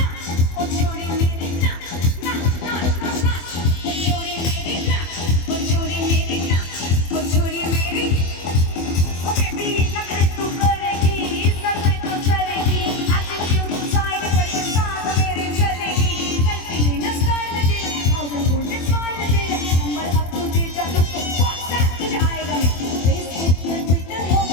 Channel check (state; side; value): late; right; 24 ms